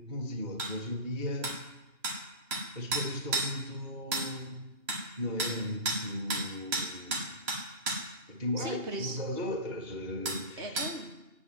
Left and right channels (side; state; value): left; late; 2.8 ms